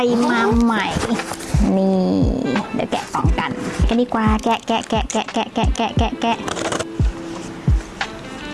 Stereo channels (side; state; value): both; identical; correlation 1.00